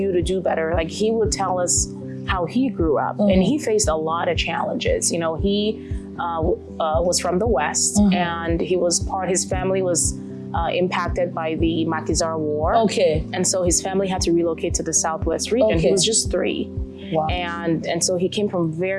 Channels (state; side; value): identical; both; correlation 1.00